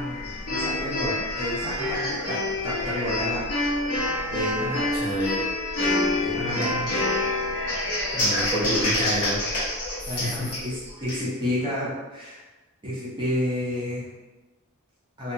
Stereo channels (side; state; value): both; normal; correlation 0.22